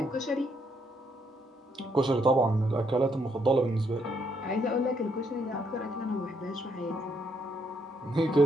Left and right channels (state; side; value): normal; both; correlation 0.74